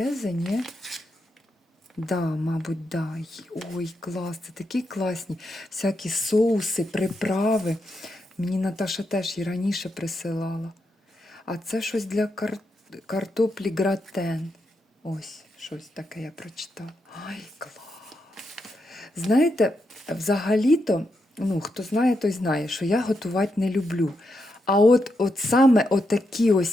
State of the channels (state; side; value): normal; both; correlation 0.83